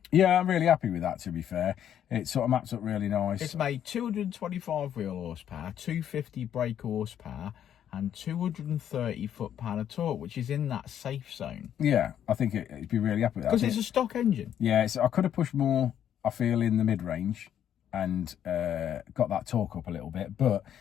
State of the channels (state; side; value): quieter; right; 9.9 dB